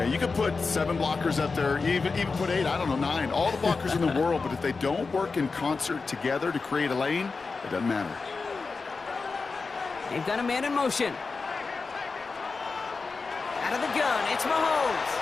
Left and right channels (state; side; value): quieter; right; 4.4 dB